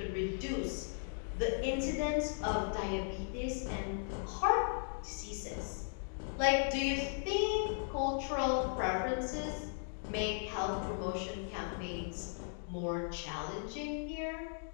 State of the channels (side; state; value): right; silent; digital silence